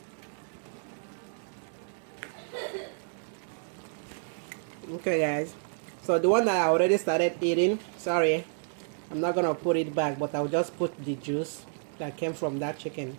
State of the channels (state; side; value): silent; left; digital silence